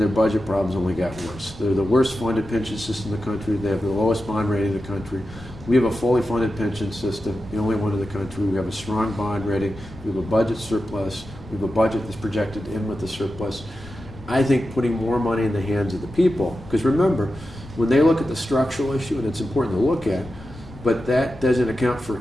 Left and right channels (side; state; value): left; noise; rumble, 18 dB below the sound